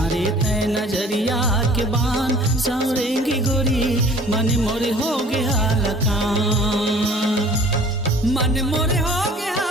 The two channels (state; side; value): normal; both; correlation 0.50